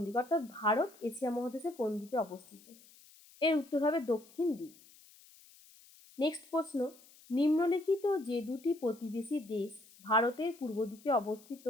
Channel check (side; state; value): left; noise; hiss, 24 dB below the sound